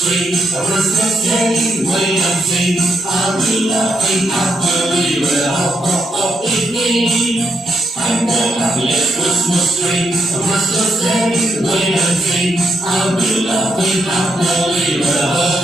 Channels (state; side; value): normal; both; correlation 0.79